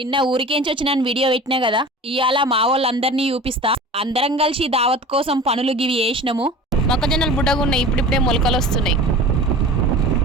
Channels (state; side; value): normal; both; correlation 0.38